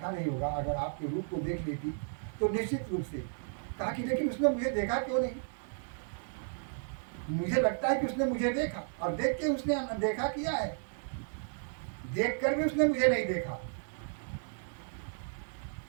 नहीं होगा, अगर आपके रूप को देख लेती तो निश्चित रूप से। कहा कि लेकिन उसने मुझे देखा क्यों नहीं? मुझे लगता है कि उसने मुझे देखा, और देख के उसने देखा किया है, देख कर भी उसने मुझे नहीं देखा।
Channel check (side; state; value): left; silent; 55 dB below the other